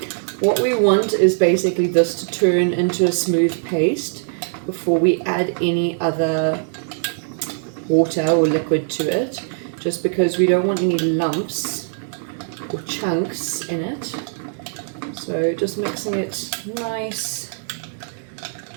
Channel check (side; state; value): left; silent; digital silence